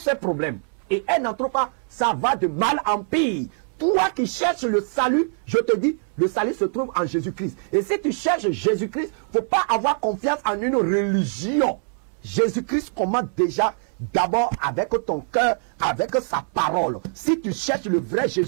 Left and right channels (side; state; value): left; silent; 60 dB below the other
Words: problèmes. Et elle n'en trouve pas, ça va de mal en pire. Toi qui cherches le salut, je te dis, le salut se trouve en Jésus-Christ. Et si tu cherches Jésus-Christ, il ne faut pas avoir confiance en une religion. Jésus-Christ commande déjà d'abord avec ton cœur, avec sa parole. Si tu cherches le vrai